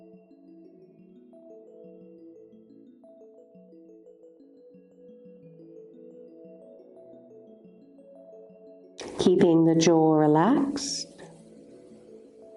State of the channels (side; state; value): both; identical; correlation 1.00